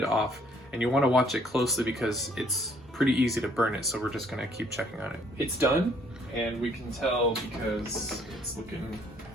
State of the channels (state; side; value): normal; both; correlation 0.63